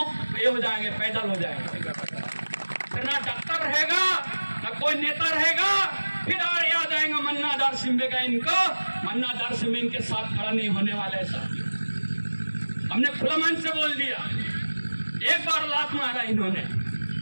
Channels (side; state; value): both; inverted; correlation -1.00